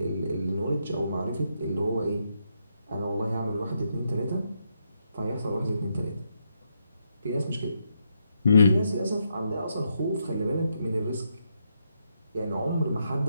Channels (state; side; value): inverted; both; correlation -0.80